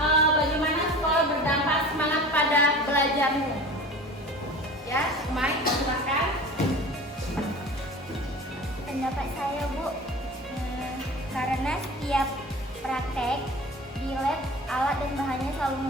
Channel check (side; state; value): both; normal; correlation 0.38